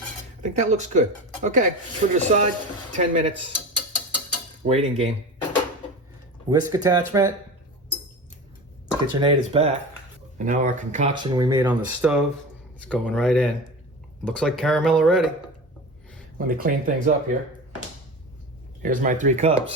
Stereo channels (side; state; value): both; normal; correlation 0.30